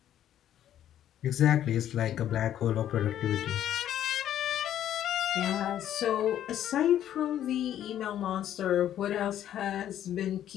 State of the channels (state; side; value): quieter; right; 11.1 dB